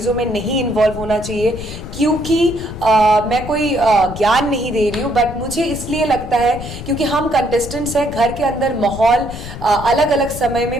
में नहीं इन्वॉल्व होना चाहिए, क्योंकि मैं कोई ज्ञान नहीं दे रही हूँ, बट मुझे इसलिए लगता है क्योंकि हम कंटेस्टेंट्स हैं, घर के अंदर माहौल अलग अलग समय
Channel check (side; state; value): left; noise; rumble, 11 dB below the sound